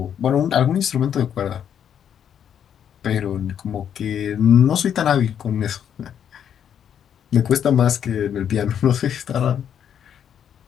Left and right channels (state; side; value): quieter; right; 8.9 dB